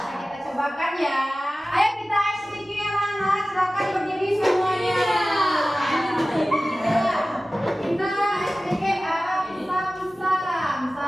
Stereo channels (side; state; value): both; normal; correlation 0.96